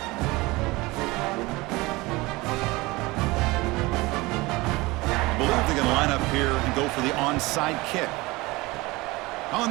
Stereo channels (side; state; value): left; quieter; 22.1 dB